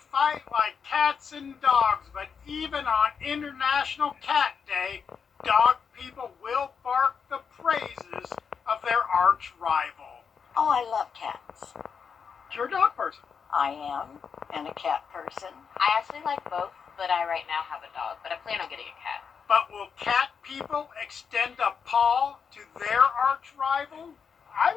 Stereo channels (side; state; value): right; quieter; 6.3 dB